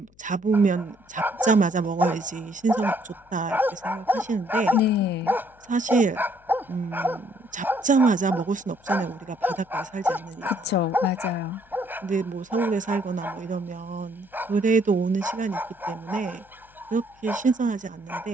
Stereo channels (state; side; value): noise; left; hum, 30 dB below the sound